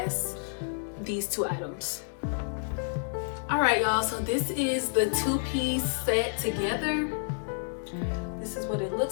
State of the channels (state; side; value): silent; right; digital silence